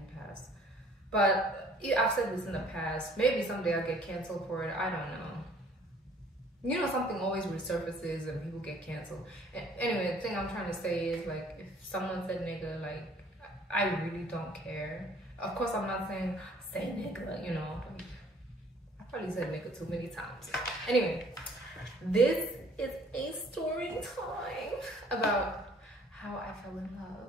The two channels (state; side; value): normal; both; correlation 0.57